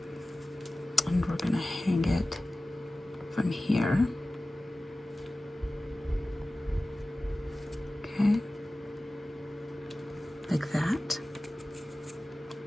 we're going to hang it from here. Okay. Like that.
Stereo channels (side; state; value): both; normal; correlation 0.97